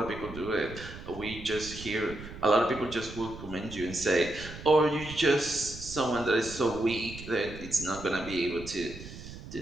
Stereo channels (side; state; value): right; noise; rumble, 13 dB below the sound